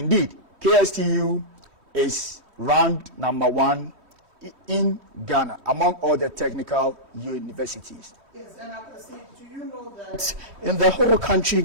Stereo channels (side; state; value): left; late; 3.1 ms